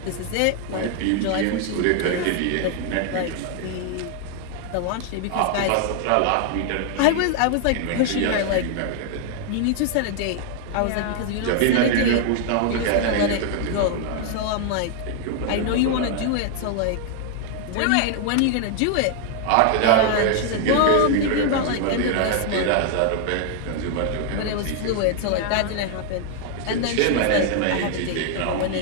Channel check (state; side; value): different; both; correlation 0.00